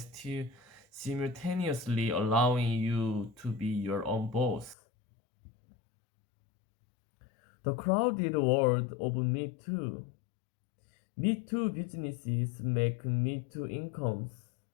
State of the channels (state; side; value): drops out; right; at 4.8 s